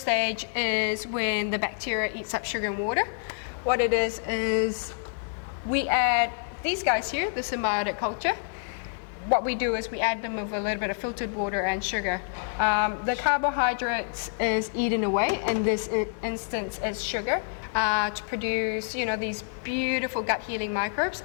is when the bacteria eats up sugar and water. What it is we add these guys here, the symbiotic culture. What we do is we add them with a little bit of filtered water and sugar. The carbohydrates is eaten away, in this instance it's sugar, to produce, you know, these beautiful gut healing microbes,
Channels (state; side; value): silent; right; digital silence